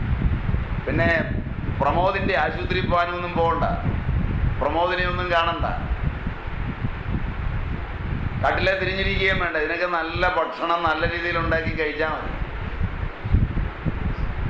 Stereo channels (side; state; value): both; identical; correlation 1.00